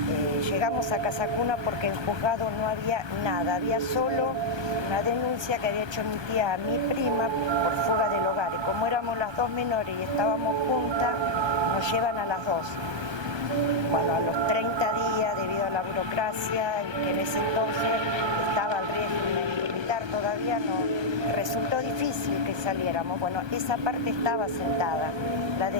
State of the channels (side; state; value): left; late; 1.2 ms